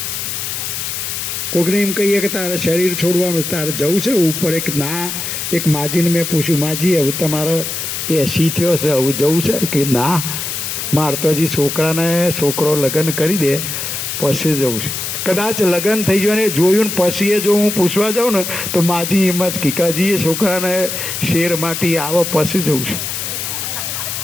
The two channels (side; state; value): left; noise; hiss, 4 dB below the sound